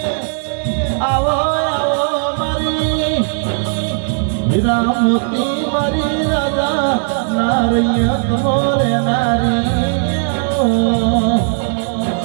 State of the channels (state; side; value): silent; left; 60 dB below the other